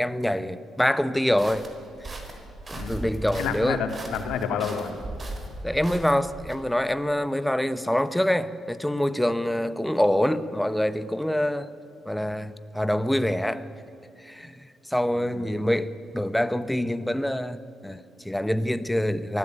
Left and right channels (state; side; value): normal; both; correlation 0.95